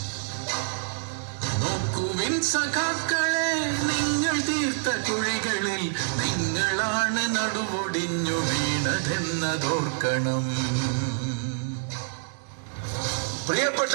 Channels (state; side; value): silent; left; digital silence